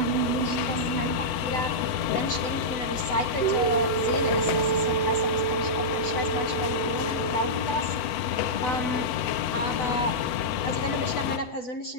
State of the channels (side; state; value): right; late; 8.0 ms